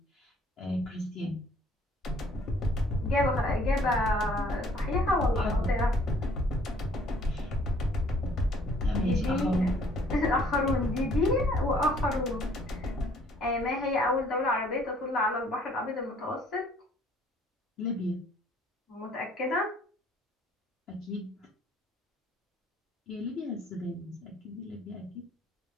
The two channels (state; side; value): normal; both; correlation 0.60